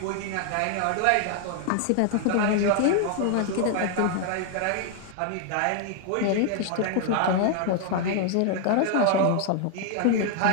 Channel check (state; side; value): different; both; correlation 0.00